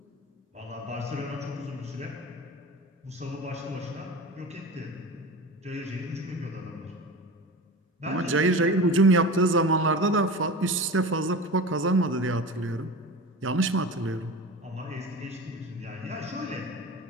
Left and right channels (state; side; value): normal; both; correlation 0.31